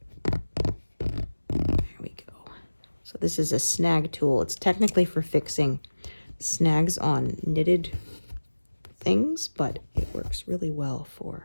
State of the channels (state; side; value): inverted; both; correlation -1.00